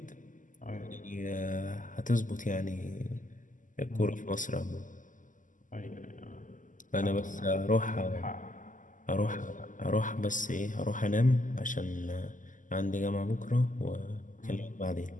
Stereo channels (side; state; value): right; late; 0.38 ms